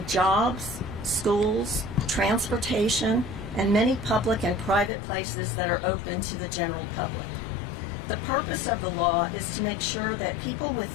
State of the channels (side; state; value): right; drops out; at 4.9 s